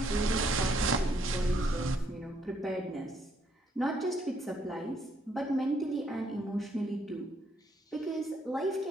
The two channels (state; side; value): normal; both; correlation 0.71